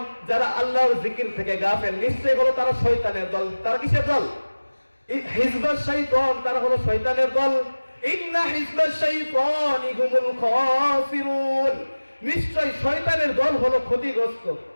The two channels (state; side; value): inverted; both; correlation -1.00